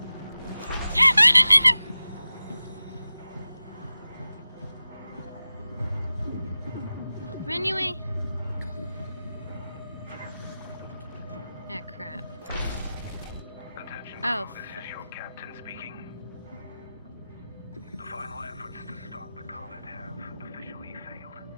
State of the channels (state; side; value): inverted; both; correlation -0.95